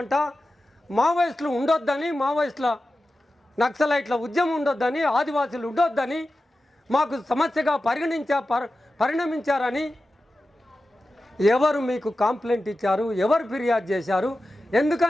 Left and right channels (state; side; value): normal; both; correlation 0.93